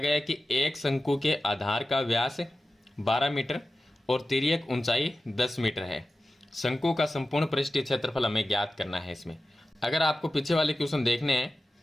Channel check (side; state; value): both; normal; correlation 0.94